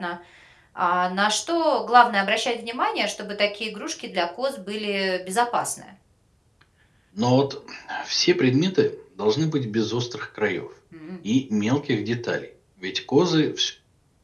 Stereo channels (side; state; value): both; identical; correlation 1.00